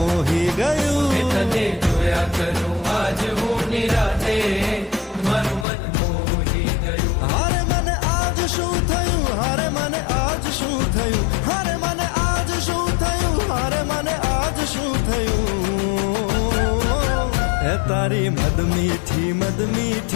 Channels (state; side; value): drops out; right; at 5.7 s